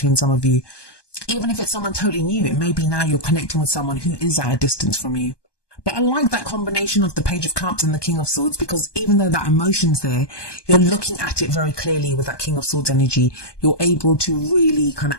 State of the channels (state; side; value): late; right; 1.2 ms